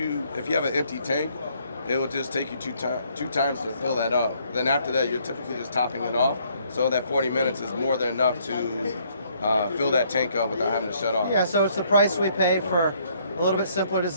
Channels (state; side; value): inverted; both; correlation -0.67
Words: you have an empty tank, it will just take you two times to fill that up. Then after that, you're typically just topping it off, so that 40 minutes is more than enough to fill that tank up without having to shut off. Yeah, so it's the price we pay for a little bit simpler